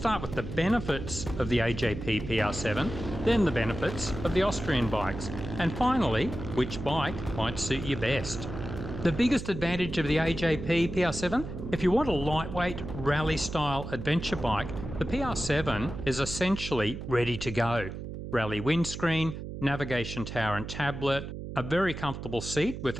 with the benefits of the AJP PR7, then the benefits of the Austrian bikes, and finally, which bike might suit you best. The biggest advantage of the AJP PR7, if you want a lightweight rally-style adventure bike, the PR7 is essentially ready to go. Rally windscreen, navigation tower and tablet, a very comfortable seat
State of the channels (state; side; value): noise; right; hum, 8 dB below the sound